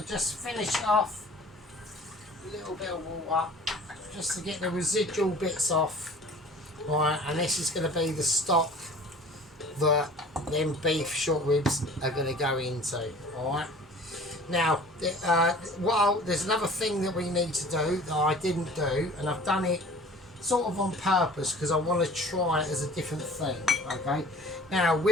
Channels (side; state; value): both; normal; correlation 0.46